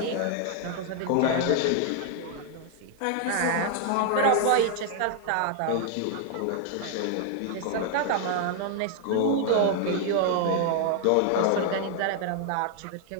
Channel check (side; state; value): both; different; correlation 0.00